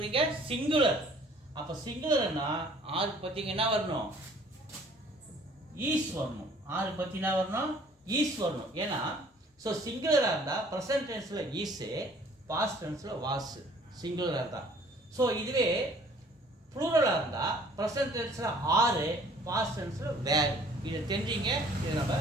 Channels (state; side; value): normal; both; correlation 0.55